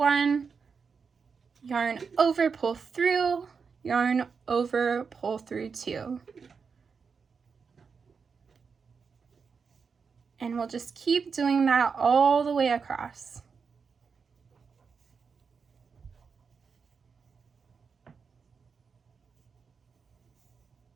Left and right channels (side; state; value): left; quieter; 5.6 dB